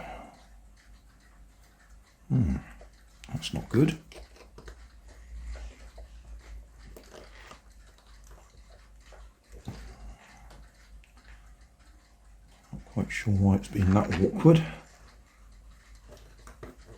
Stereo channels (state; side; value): identical; both; correlation 1.00